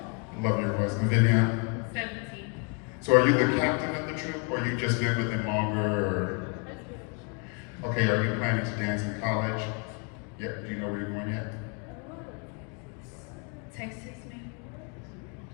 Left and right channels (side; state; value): right; quieter; 37.1 dB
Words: Love your voice. And Vivian. 17. So are you the captain of the troop, or you just been with them longer? Or... Okay, are you planning to dance in college? Yeah, do you know where you're going yet? Texas, maybe?